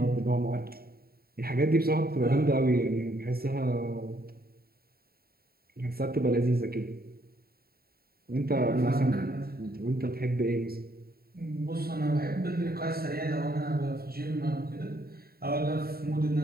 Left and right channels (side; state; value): left; late; 0.44 ms